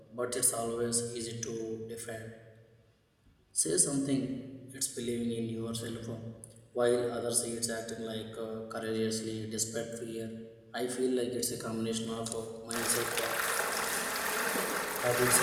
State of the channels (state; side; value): identical; both; correlation 1.00